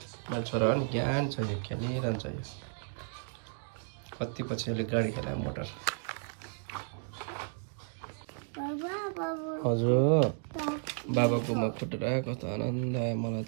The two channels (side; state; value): left; silent; 56 dB below the other